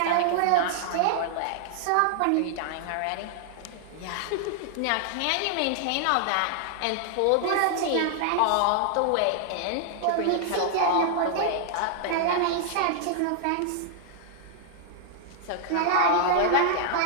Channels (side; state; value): both; different; correlation -0.01